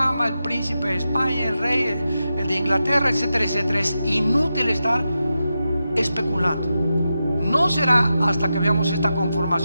el príncipe de España, el rey, el de Inglaterra, etcétera, etcétera. Es inútil estar especulando. No será hasta que veamos esta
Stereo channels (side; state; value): both; inverted; correlation -0.89